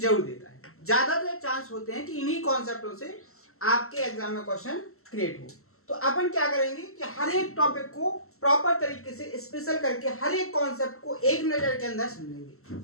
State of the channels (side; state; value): right; late; 0.63 ms